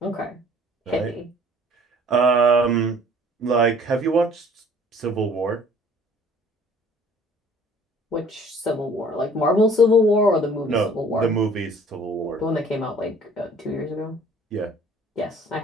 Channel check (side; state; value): both; normal; correlation 0.54